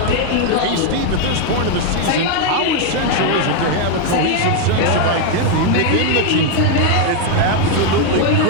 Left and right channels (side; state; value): both; different; correlation 0.01